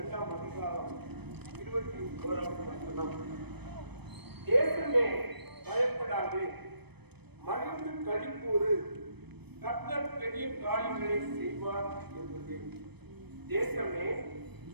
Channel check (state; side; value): late; left; 0.98 ms